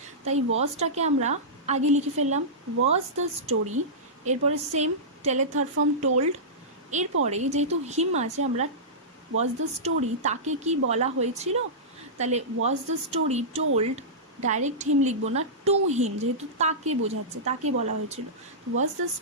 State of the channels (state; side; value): normal; both; correlation -0.16